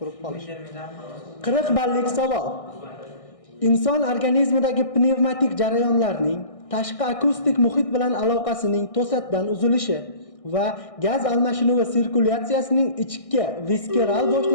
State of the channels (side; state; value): right; late; 1.6 ms